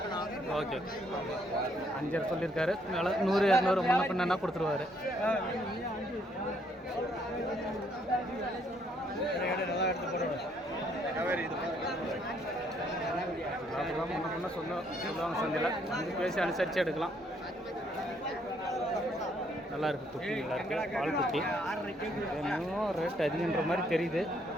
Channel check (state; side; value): normal; both; correlation 0.69